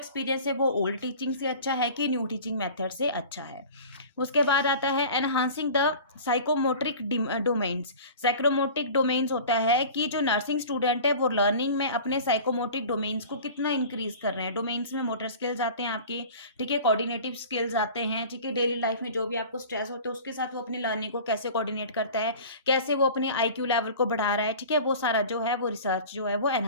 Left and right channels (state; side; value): inverted; both; correlation -0.40